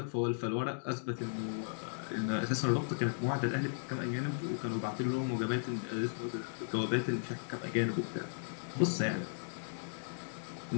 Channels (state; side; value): silent; right; digital silence